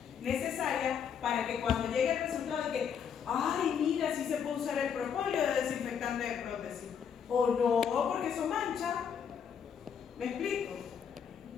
necesaria para que cuando llegue el resultado de que, ay, mira, sí se puede usar el propóleo de desinfectante de prótesis, o no, porque eso mancha. ¿Me explico?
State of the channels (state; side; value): quieter; right; 7.5 dB